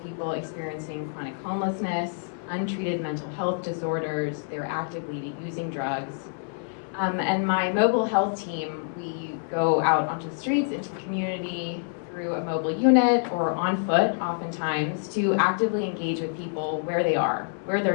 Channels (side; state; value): right; silent; 60 dB below the other